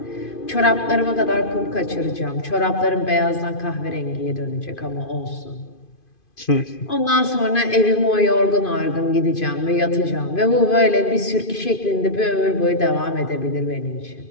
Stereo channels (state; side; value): late; right; 2.5 ms